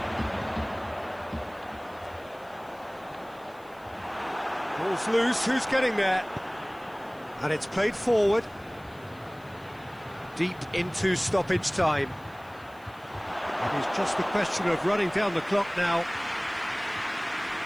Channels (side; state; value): left; noise; hiss, 28 dB below the sound